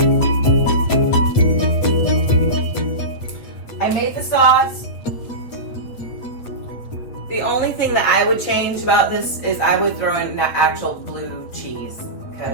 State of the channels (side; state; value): right; late; 8.7 ms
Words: I made the sauce. The only thing that I would change about this is I would throw in actual blue cheese,